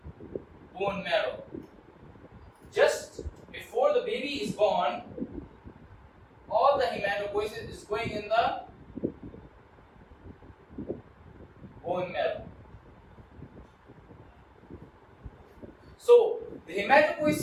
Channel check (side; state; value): both; identical; correlation 1.00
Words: bone marrow. Just before the baby is born, all the hematopoiesis is going in the bone marrow. So the